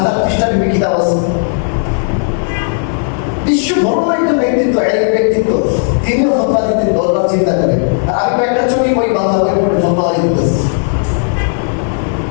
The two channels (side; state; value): right; silent; digital silence